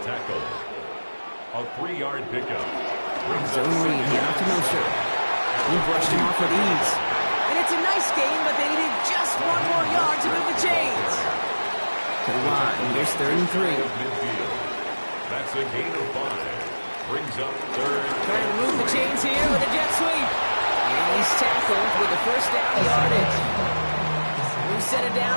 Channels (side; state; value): both; inverted; correlation -1.00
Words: tackle. A 3-yard pickup. Zone read here out to Mostert. He brushed him off with ease. And it's a nice game, but they needed just 1 more yard to move the chains. To the line. Here's third and 3. That's a gain of 5. Brings up third. Trying to move the chains here with a jet sweep. And he's tackled with a first down yardage. New set of